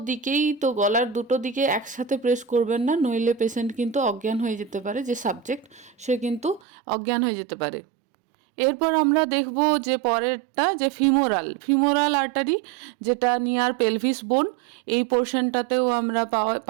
দিকেই, তো গলার দুটো দিকে একসাথে প্রেস করবেন না, নইলে পেশেন্ট কিন্তু অজ্ঞান হয়ে যেতে পারে, যে সাবজেক্ট সে কিন্তু অজ্ঞান হয়ে যেতে পারে। এরপর আমরা দেখব যে পরেরটা, যে ফিমোরাল আর্টারি, যেটা নিয়ার পেলভিস বোন, এই পোর্শনটাতেও আমরা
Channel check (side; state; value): left; drops out; at 6.6 s